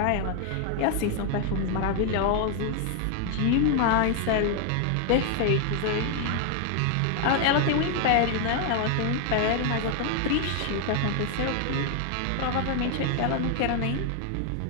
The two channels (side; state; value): both; different; correlation 0.00